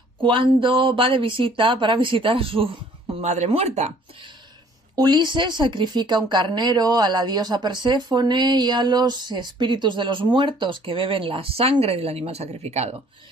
cuando va de visita para visitar a su madre muerta. Ulises sacrifica un carnero a la diosa Perséfone y a los espíritus de los muertos que beben la sangre del animal sacrificado.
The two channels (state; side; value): normal; both; correlation 0.57